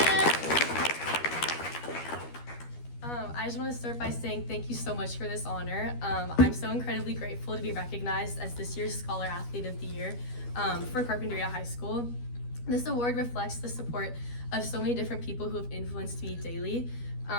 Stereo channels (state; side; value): late; right; 12 ms